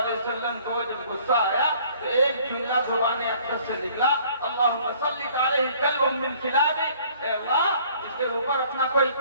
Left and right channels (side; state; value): both; inverted; correlation -0.56